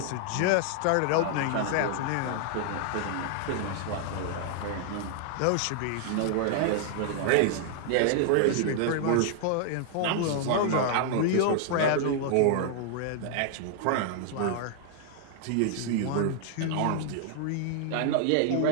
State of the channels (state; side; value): different; both; correlation 0.00